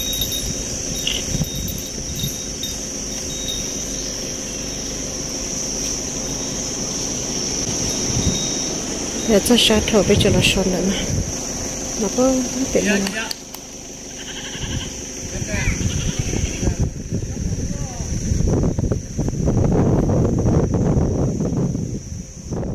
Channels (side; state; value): both; identical; correlation 1.00